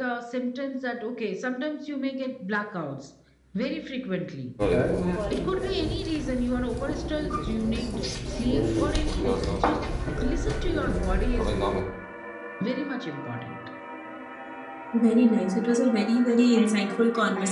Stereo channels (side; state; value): both; identical; correlation 1.00